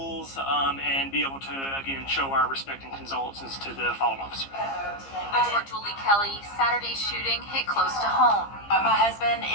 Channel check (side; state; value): right; late; 15 ms